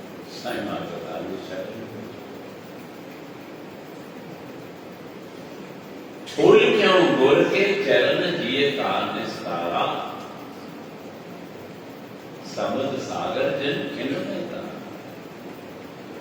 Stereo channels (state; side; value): identical; both; correlation 1.00